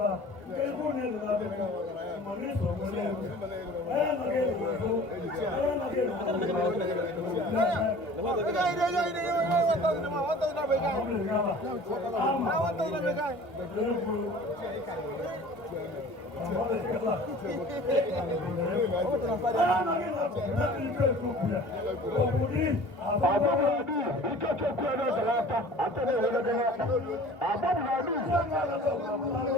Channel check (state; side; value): late; right; 2.5 ms